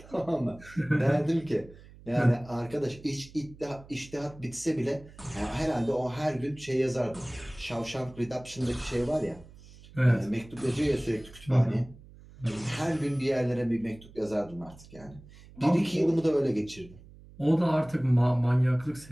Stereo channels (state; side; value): noise; right; hum, 21 dB below the sound